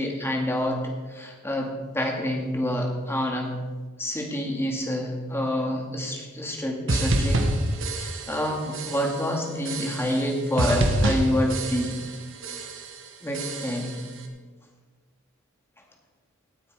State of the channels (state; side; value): normal; both; correlation 0.73